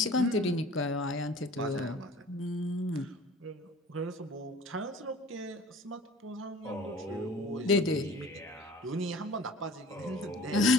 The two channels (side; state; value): both; normal; correlation 0.46